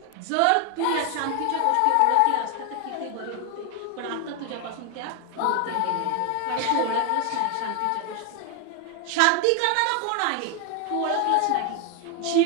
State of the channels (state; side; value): different; both; correlation 0.01